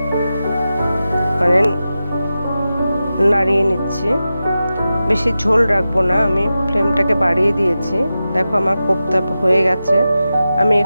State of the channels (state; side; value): inverted; both; correlation -0.92